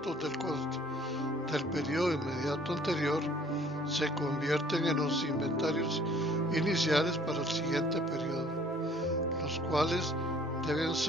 del costo del periodo inmediato anterior se convierten en los inventarios iniciales para el siguiente periodo, los cuales deben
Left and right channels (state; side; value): normal; both; correlation 0.56